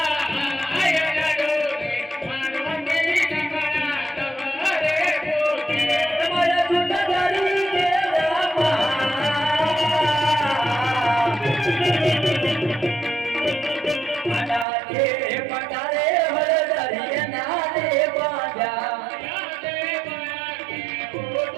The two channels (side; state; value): left; drops out; at 14.7 s